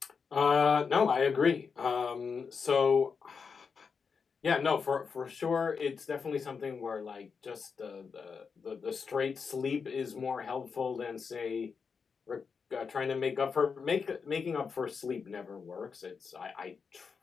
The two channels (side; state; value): right; quieter; 5.7 dB